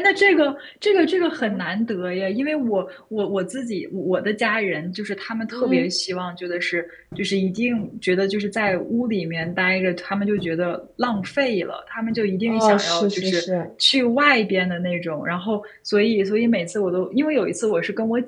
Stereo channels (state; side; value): identical; both; correlation 1.00